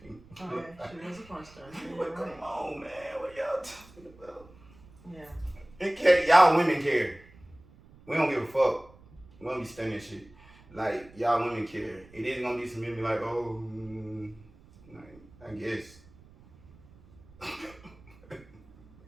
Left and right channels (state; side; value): noise; right; rumble, 24 dB below the sound